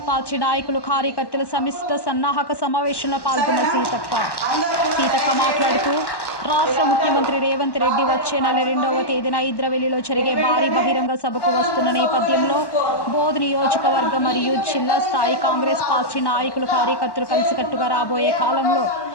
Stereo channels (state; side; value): late; right; 1.1 ms